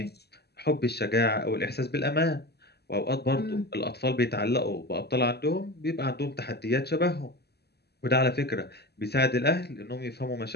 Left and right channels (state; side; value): late; right; 0.47 ms